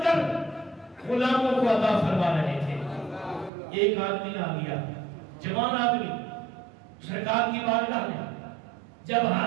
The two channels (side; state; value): left; drops out; at 3.5 s